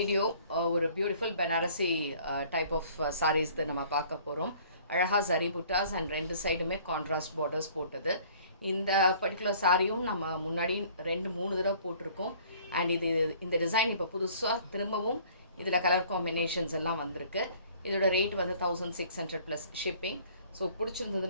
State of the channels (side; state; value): both; inverted; correlation -0.54